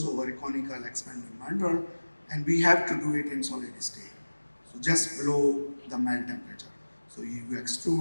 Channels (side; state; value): both; inverted; correlation -1.00